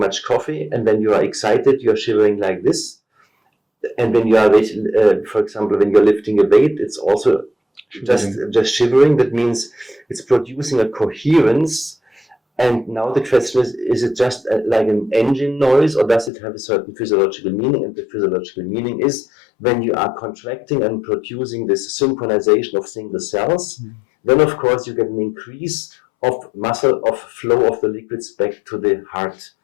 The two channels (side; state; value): right; drops out; at 16.3 s